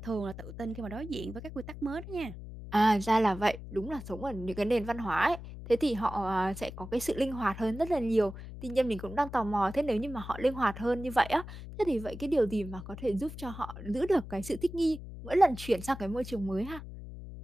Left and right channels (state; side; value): noise; left; hum, 11 dB below the sound